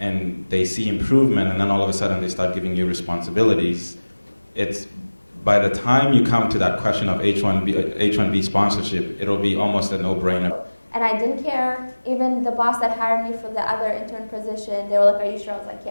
they see improvement, and then all of a sudden they start giving you responsibilities, it's by the time you come to that question of H-1B sponsorship, it'll be almost a no-brainer. And I didn't care. Even the boss that hired me for the other intern position, they were like, are you sure? I was like,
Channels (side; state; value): both; inverted; correlation -1.00